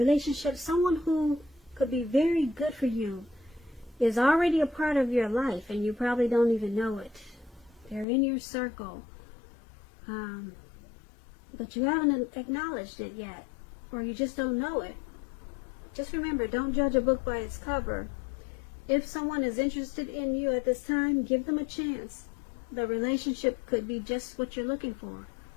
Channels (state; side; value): drops out; right; at 8.1 s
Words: someone who could be very good for you is already a part of your life, and you probably don't even know it. They're in your circle, but you haven't acknowledged it yet, or you just don't know it. Just remember, don't judge a book by its cover. If someone is interested in you at this time, give them a chance. The relationship could be just what you're looking for.